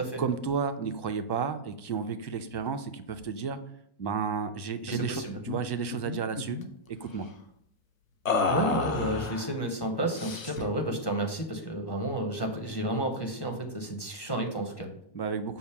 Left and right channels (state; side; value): late; right; 1.1 ms